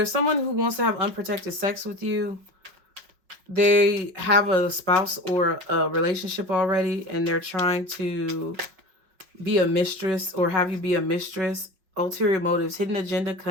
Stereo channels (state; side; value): late; left; 5.5 ms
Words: someone who wants to have unprotected sex with you. They have a spouse or a relationship already, and they're trying to be a mistress or have you be a mistress. Ulterior motives, hidden agenda,